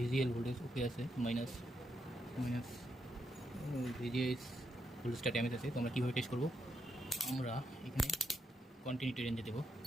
ভোল্টেজ ওকে আছে, মাইনাস ভিজিএস ভোল্টেজটা ড্যামেজ আছে। তো আমরা কীভাবে টেস্ট করবো? আমরা এখানে কন্টিনিউটি রেঞ্জে দেবো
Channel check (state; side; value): normal; both; correlation 0.80